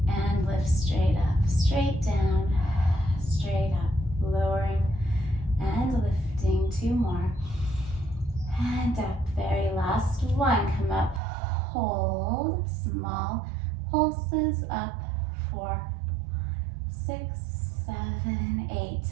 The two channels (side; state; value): left; drops out; at 11.2 s